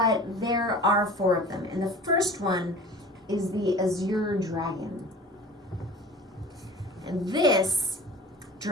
there are 4 of them. And the first one is the Azure Dragon. And this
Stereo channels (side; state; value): both; normal; correlation 0.41